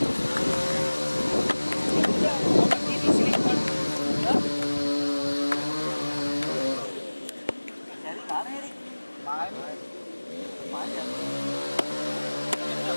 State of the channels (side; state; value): both; inverted; correlation -1.00